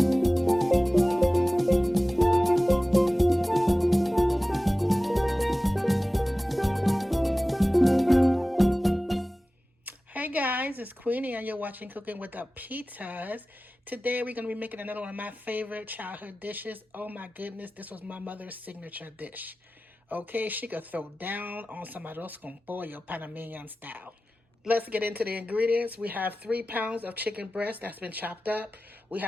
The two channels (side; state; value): both; normal; correlation 0.96